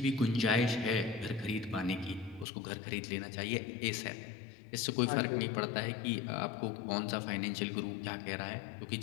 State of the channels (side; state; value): right; drops out; at 2.5 s